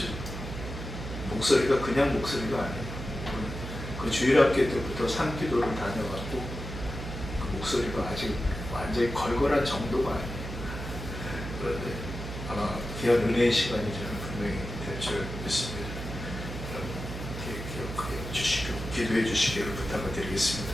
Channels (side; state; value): right; noise; hum, 7 dB below the sound